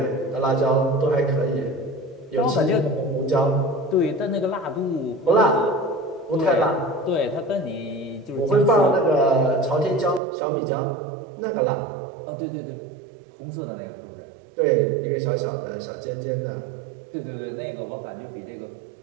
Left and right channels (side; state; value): left; drops out; at 10.2 s